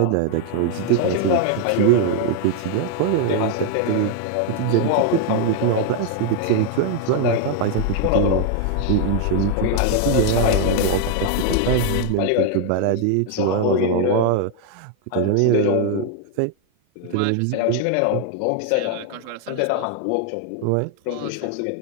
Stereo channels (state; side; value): different; both; correlation 0.00